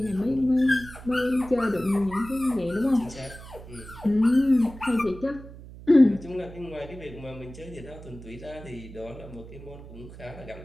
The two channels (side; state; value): right; noise; hum, 16 dB below the sound